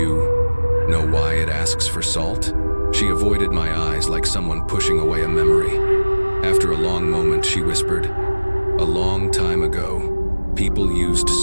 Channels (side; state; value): both; inverted; correlation -1.00